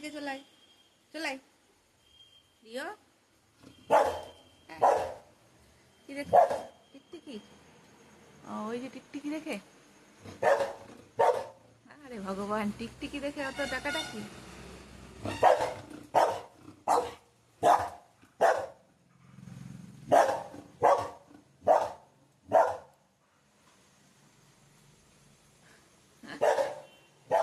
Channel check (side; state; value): both; identical; correlation 1.00